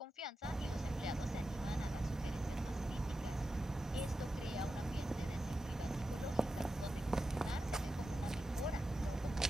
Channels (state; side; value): normal; both; correlation 0.91